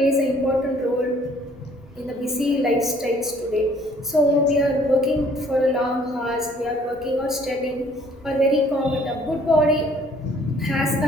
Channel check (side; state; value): right; noise; rumble, 27 dB below the sound